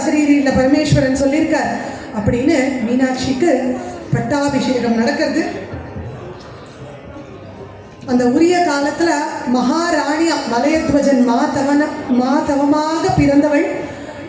பரமேஸ்வரன் சொல்லியிருக்கார். அப்படின்னு மீனாட்சிக்கு பட்டாபிஷேகம் நடக்கிறது. அந்த உரிய காலத்துல மகாராணியா மலையத்வஜன் மாதவமாக பிறந்தவள்,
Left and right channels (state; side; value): identical; both; correlation 1.00